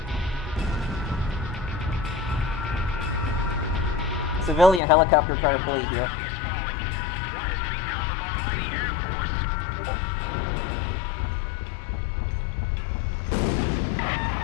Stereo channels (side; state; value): right; drops out; at 4.8 s